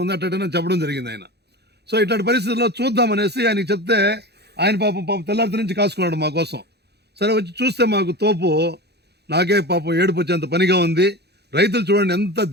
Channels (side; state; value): left; late; 0.48 ms